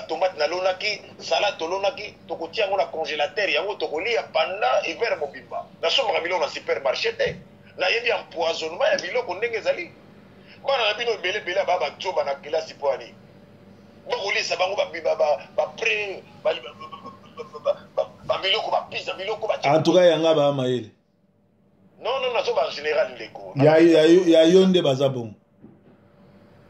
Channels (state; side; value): identical; both; correlation 1.00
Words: nalonaki salade tolonaki tokotia yango na congélateur yango tokolia pendant hiver mobimba nasombaka biloko na supermarché te nayebi empoisonnement ya biloko ndenge ezali bana na bino ebelebele aba bajoba na kelasi po ani bakolisa bango bapre babiloko bapisa biloko en tout cas yanga bamayele non nazoba en général ndeko ya yo nde baza bongo